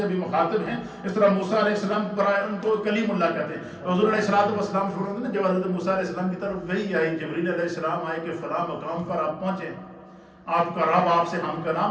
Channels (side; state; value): both; identical; correlation 1.00